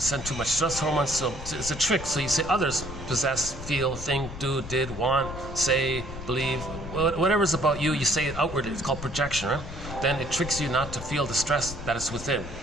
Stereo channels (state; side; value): noise; left; rumble, 10 dB below the sound